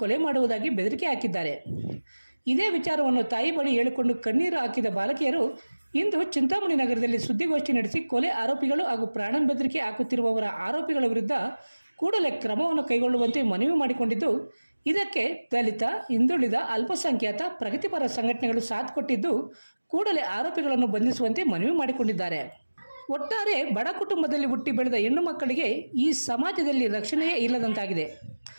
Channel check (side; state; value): both; inverted; correlation -1.00